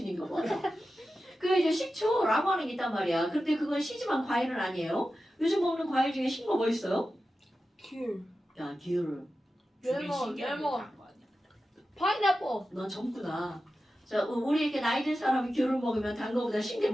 봐. 그 이제 식초라고 하는 게 있단 말이야. 근데 그건 시지만 과일은 아니에요. 요즘 먹는 과일 중에 신 거 뭐 있어요? 귤. 야, 귤. 레몬. 파인애플. 넌 젊구나. 자, 우리 이렇게 나이 든 사람이 귤을 먹으면 단 거보다 신 게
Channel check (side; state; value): both; normal; correlation 0.92